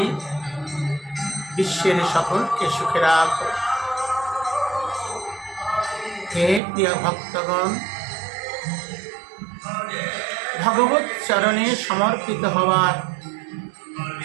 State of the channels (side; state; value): left; drops out; at 6.6 s